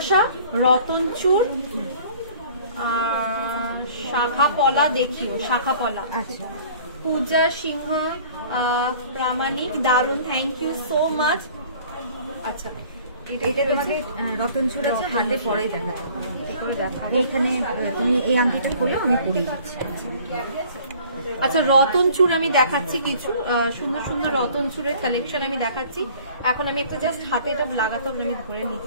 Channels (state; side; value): inverted; both; correlation -0.51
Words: রতনচুর, শাখা পলা দেখিও, শাখা পলা। আচ্ছা, পূজা সিংহ প্রামাণিক, দারুন, থ্যাংক ইউ সো মাচ। আচ্ছা, এটা তোমাকে রতনচুর আছে, হাতে পরে দেখাবো। এইখানে তুমি এই আংটিটা খোলো, আমি পরিয়ে দিচ্ছি। আচ্ছা, রতনচুর আমি দেখাচ্ছি কিছু সুন্দর সুন্দর রতনচুরের কালেকশন আমি দেখাচ্ছি। এখন আমি একটা জাস্ট হাতে এটা লাগাতে হবে, আমি ধরে